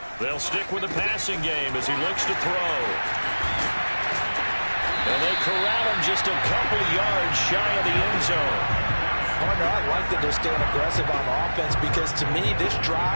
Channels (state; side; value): inverted; both; correlation -1.00